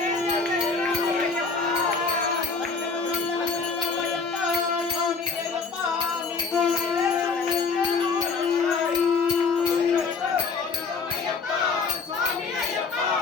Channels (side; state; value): right; quieter; 4.8 dB